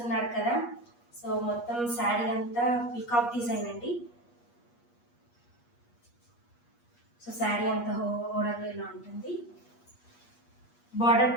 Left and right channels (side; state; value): right; late; 8.4 ms